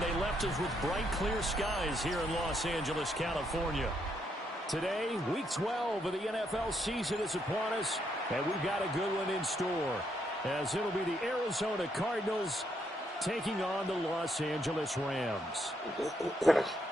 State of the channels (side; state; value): both; normal; correlation 0.76